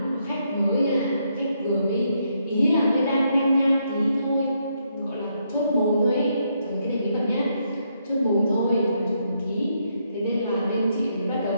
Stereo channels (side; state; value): both; inverted; correlation -0.76